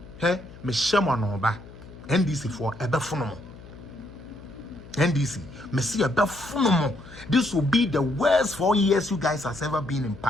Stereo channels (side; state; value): left; noise; hum, 18 dB below the sound